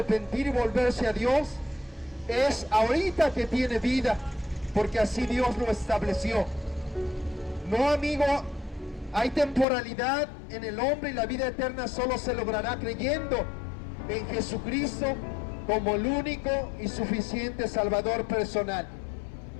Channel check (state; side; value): drops out; right; at 9.7 s